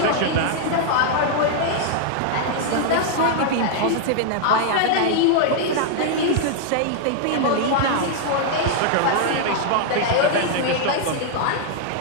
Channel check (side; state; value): both; different; correlation -0.01